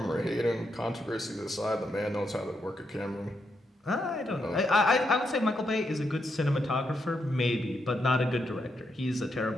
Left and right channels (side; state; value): both; normal; correlation 0.81